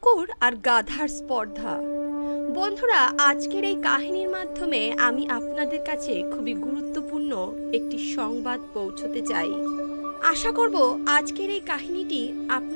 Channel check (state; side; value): inverted; both; correlation -1.00